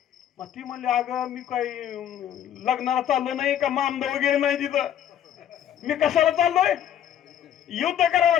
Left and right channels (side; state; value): right; quieter; 10.3 dB